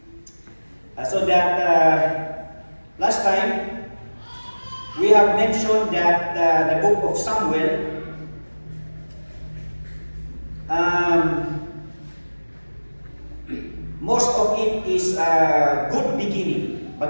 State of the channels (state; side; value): inverted; both; correlation -1.00